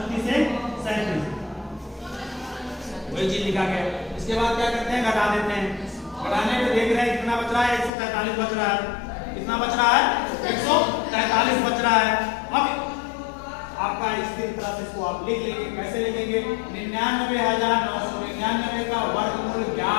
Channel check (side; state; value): right; drops out; at 7.9 s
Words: से 37, वही चीज लिखा गया। इसके बाद क्या करते हैं? घटा देते हैं। घटाने पे देख रहे हैं कितना बच रहा है? 143 बच रहा है। कितना बच रहा है? 143 बच रहा है। अब आप आपका स्थिर तरह से इसको आप लिख लेंगे। कैसे लिखेंगे? 99,999 का वर्गमूल